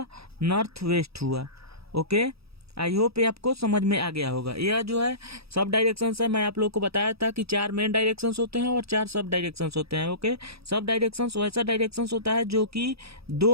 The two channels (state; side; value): late; left; 0.77 ms